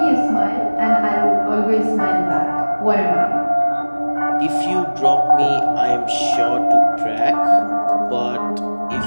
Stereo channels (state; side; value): inverted; both; correlation -1.00